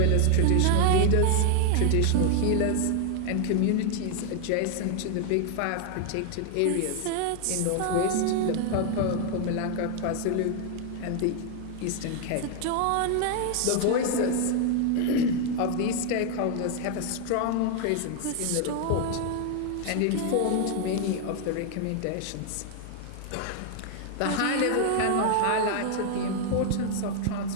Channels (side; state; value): both; different; correlation 0.00